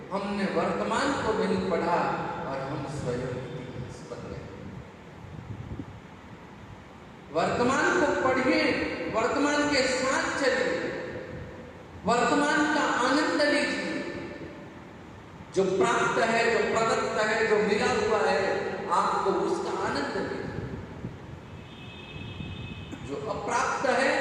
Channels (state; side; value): identical; both; correlation 1.00